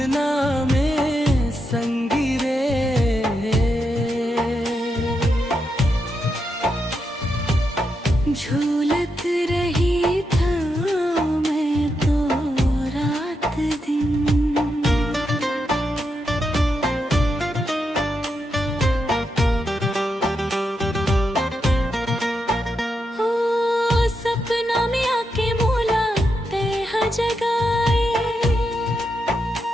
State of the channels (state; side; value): normal; both; correlation 0.84